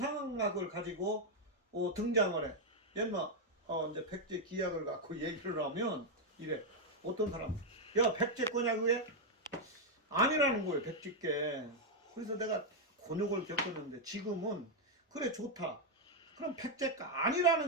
가지고 등장을 해. 옛날 이제 백제 기약을 갖고 얘기를 하면 이래. 어떤 사람, 야 백제 거냐 그게? 아니라는 거예요. 백제께. 그래서 내가 곤욕을 겪었는데 지금은 그래 좋다. 그럼 백제가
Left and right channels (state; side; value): normal; both; correlation 0.00